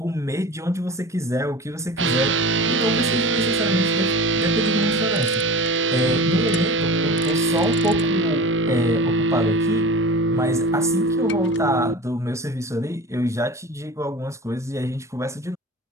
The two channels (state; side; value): normal; both; correlation 0.35